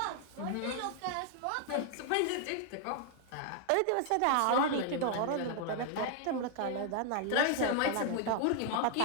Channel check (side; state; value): both; different; correlation 0.00